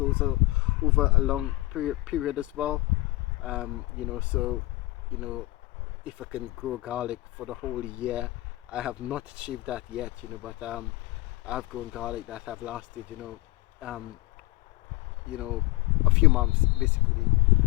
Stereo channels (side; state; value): right; quieter; 20.0 dB